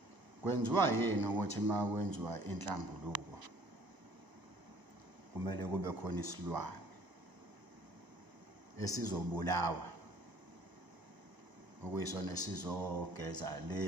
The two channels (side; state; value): left; late; 1.0 ms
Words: Kwenziwa yini ukuthi uma kwenziwa inhlambuluko kumele kube khona isilwane esizobulawa okuyisona esizogeza